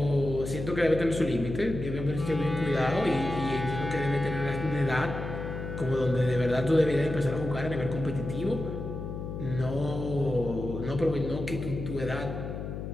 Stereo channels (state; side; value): noise; left; hum, 6 dB below the sound